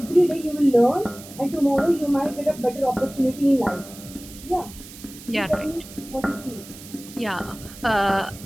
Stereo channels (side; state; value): right; noise; hiss, 17 dB below the sound